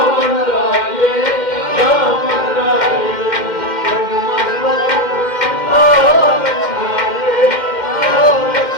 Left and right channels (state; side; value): late; right; 2.1 ms